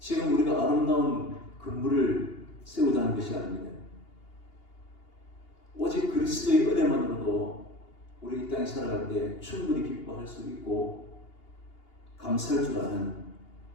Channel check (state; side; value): late; right; 2.8 ms